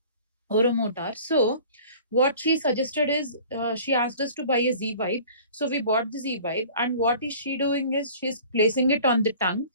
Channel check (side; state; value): both; inverted; correlation -0.46